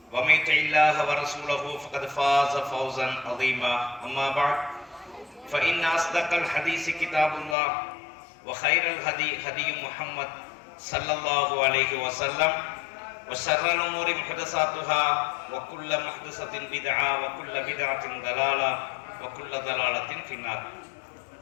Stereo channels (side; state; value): right; drops out; at 7.6 s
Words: ومن يطع الله ورسوله فقد فاز فوزا عظيما أما بعد فإن أصدق الحديث كتاب الله وخير الهدي هدي محمد صلى الله عليه وسلم وشر الأمور محدثاتها وكل محدثة بدعة وكل بدعة ضلالة وكل ضلالة في النار.